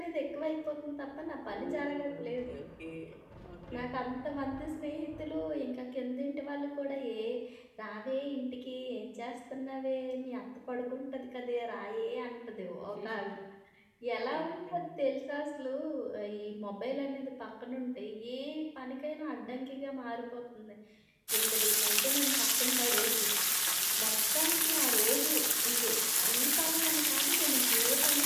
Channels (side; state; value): both; identical; correlation 1.00